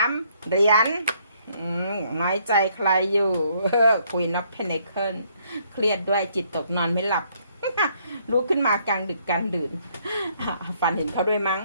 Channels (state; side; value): inverted; both; correlation -0.68